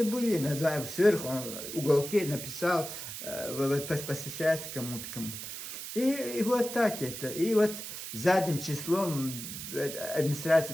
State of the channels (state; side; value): noise; right; hiss, 8 dB below the sound